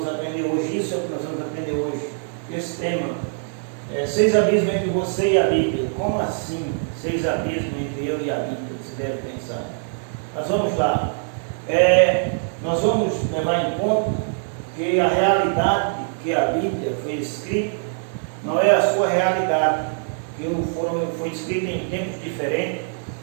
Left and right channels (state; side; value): silent; left; digital silence